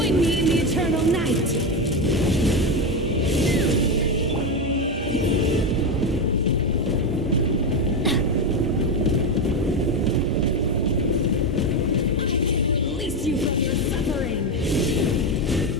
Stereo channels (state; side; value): normal; both; correlation 0.12